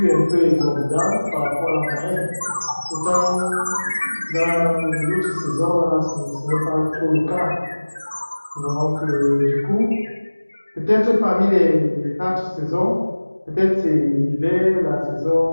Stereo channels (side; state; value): both; inverted; correlation -1.00